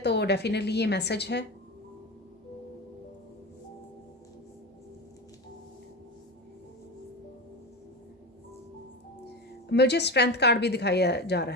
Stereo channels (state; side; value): normal; both; correlation 0.24